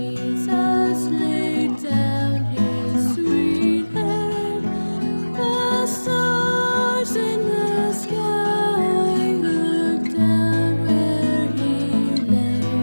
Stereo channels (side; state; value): both; inverted; correlation -1.00